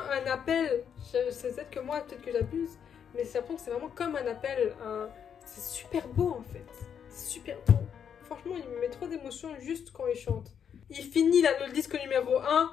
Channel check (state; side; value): quieter; right; 7.9 dB